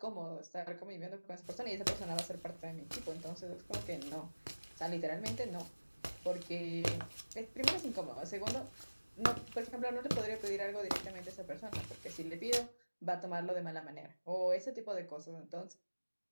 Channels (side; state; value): both; inverted; correlation -1.00